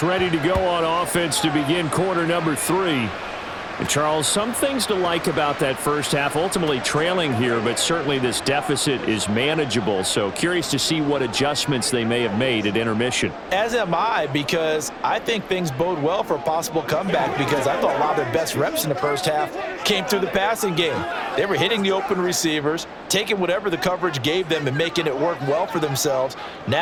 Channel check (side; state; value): both; identical; correlation 1.00